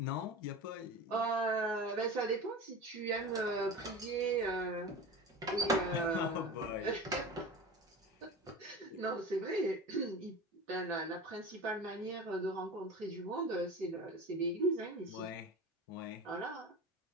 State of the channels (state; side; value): normal; both; correlation 0.32